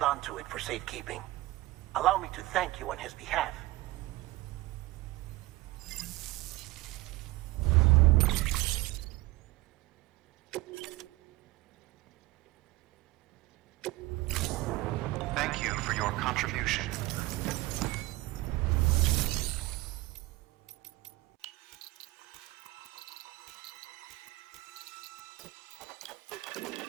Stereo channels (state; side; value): quieter; left; 18.8 dB